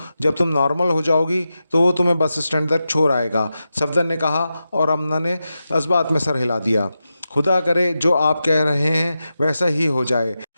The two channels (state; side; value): inverted; both; correlation -0.90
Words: जब तुम नॉर्मल हो जाओगी तो वो तुम्हें बस स्टैंड तक छोड़ आएगा। सफदर ने कहा और आमना ने इस बात में सर हिला दिया। खुदा करे जो आप कह रहे हैं वैसा ही हो जाए।